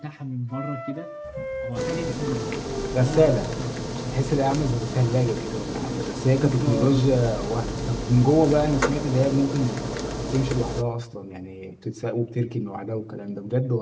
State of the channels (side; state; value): both; identical; correlation 1.00